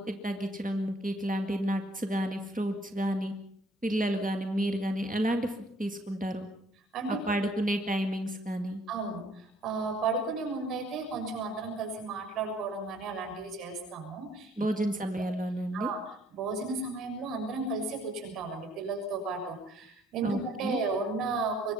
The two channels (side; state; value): both; normal; correlation 0.61